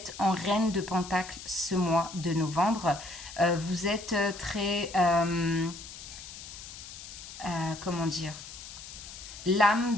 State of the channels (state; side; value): noise; left; hiss, 13 dB below the sound